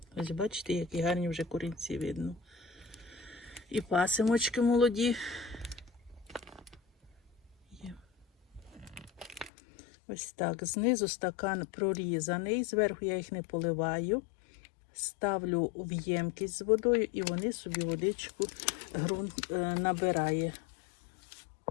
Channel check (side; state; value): right; drops out; at 9.5 s